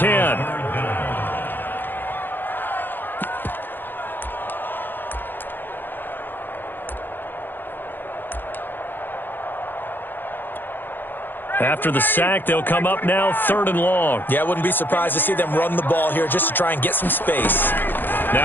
After the sack, they'll come up now 3rd and long. Yeah, I wouldn't be surprised to see them run the ball here just to try and get some space.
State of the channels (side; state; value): right; late; 0.093 ms